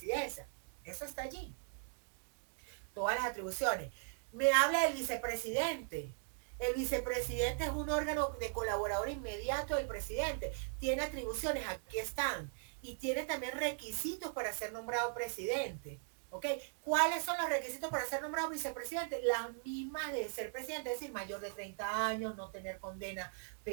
Eso está allí. Todas las atribuciones. Me habla del vicepresidente. El vicepresidente es un órgano de colaborador inmediato del presidente. Tiene atribuciones, aquí están. Y tiene también requisitos para ser nombrado presidente. ¿Ok? ¿Cuáles son los requisitos para ser nombrado vicepresidente? Las mismas de ser presidente, es decir, mayor de 30 años, no tener condena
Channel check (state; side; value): silent; left; digital silence